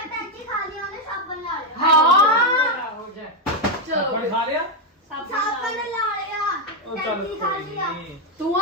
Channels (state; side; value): normal; both; correlation 0.03